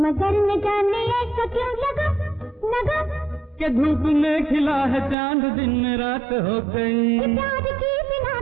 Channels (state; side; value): drops out; left; at 5.2 s